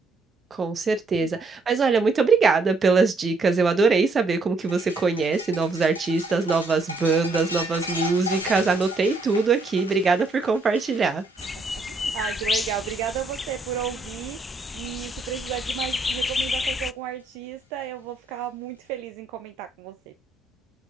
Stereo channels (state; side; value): quieter; left; 3.5 dB